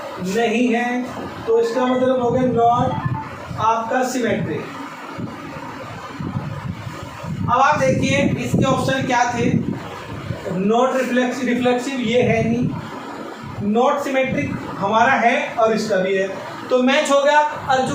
नहीं है, तो इसका मतलब हो गया नॉट आपका सिमेट्रिक। अब आप देखिए इसके ऑप्शन क्या थे? नॉट रिफ्लेक्सिव ये है नहीं, नॉट सिमेट्रिक हमारा है और इसका भी है, तो मैच हो गया। और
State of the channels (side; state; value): both; identical; correlation 1.00